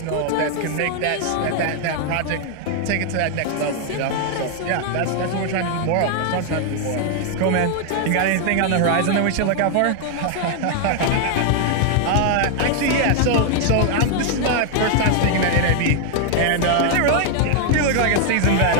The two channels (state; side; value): different; both; correlation 0.00